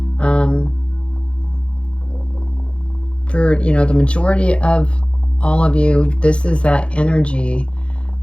for, you know, the majority of all of you, this is that energy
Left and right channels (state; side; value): late; right; 0.059 ms